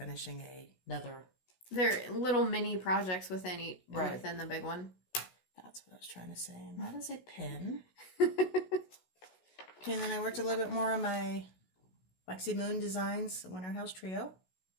another. They're little mini projects within Right. within the big one. That's what I was trying to say. And that is a pin. Okay, and then I worked a little bit more on my Lexi Moon Designs Winter House Trio.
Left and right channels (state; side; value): late; right; 16 ms